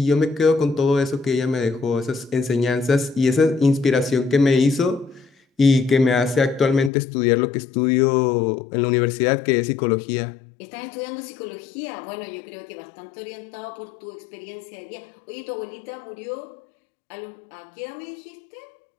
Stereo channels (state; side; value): drops out; right; at 6.9 s